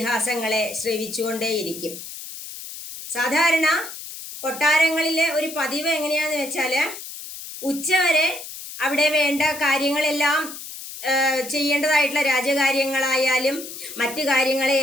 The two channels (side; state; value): left; noise; hiss, 11 dB below the sound